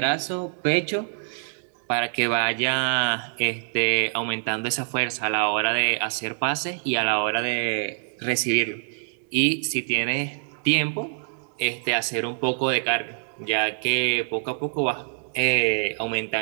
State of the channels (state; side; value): silent; left; digital silence